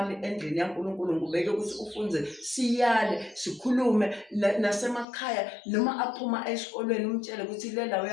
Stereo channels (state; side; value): drops out; right; at 5.1 s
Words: endlini yaNkulunkulu, ngibeke ukuthi ufunze, siyale, sikhulume nasemakhaya noma aphuma esikolweni umtshele ukuthi le la